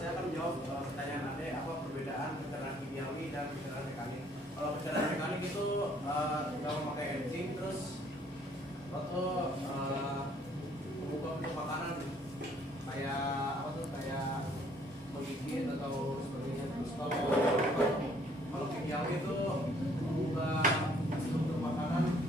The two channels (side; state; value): both; normal; correlation 0.62